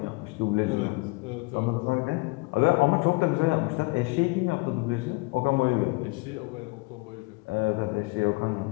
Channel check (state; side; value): quieter; right; 25.9 dB